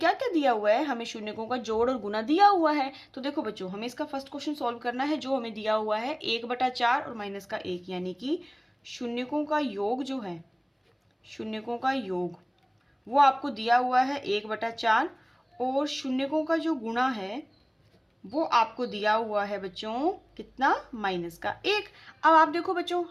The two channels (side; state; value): both; identical; correlation 1.00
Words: क्या दिया हुआ है, हमें शून्यकों का जोड़ और गुना दिया हुआ है। तो देखो बच्चों, हमें इसका फर्स्ट क्वेश्चन सॉल्व करना है। जो हमें दिया हुआ है 1/4 और माइनस का 1, यानी कि शून्यकों का योग जो है, शून्यकों का योग वो आपको दिया हुआ है 1/4 और शून्यकों का जो गुणा है वो आपको दिया हुआ है बच्चों कितना, माइनस का 1। अब आप देखो बच्चों,